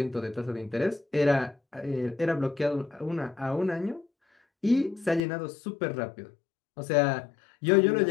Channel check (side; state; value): right; drops out; at 5.2 s